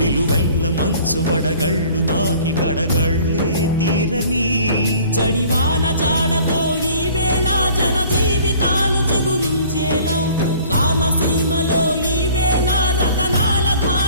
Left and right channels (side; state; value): both; inverted; correlation -0.51